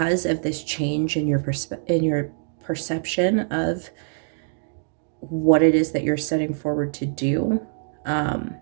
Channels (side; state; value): left; silent; digital silence